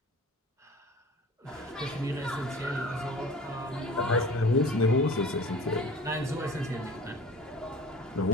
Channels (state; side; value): normal; both; correlation 0.42